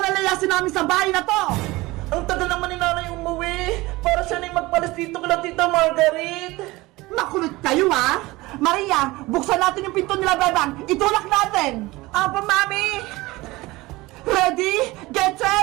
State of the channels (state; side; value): quieter; left; 20.5 dB